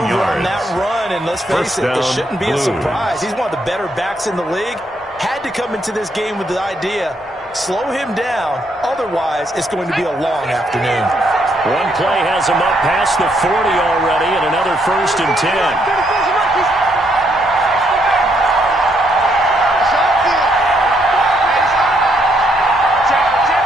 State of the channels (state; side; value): normal; both; correlation 0.74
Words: on that run, and let's face it, it shouldn't be a surprise. He's one of the better backs in the league. Had to come into this game with the idea, slow him down, otherwise it's going to be a long afternoon. One play has him up past the 40 already, and another 1st and 10.